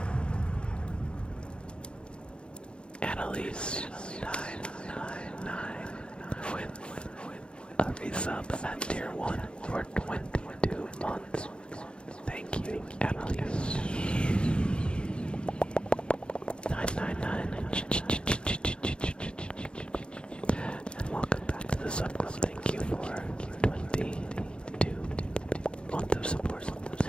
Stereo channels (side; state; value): right; late; 0.054 ms